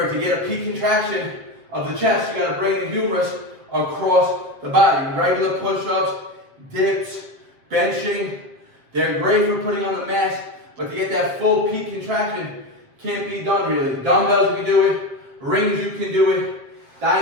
to get a peak contraction of the chest, you got to bring the humerus across the body. Regular push-ups, dips, benching, they're great for putting on the mass, but to get that full peak contraction can't be done really. Dumbbells you can do it, rings you can do it,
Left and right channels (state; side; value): late; left; 7.5 ms